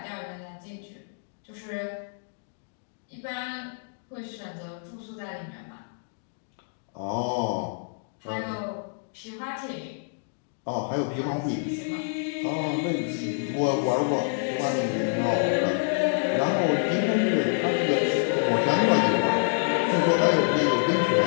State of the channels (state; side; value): silent; right; digital silence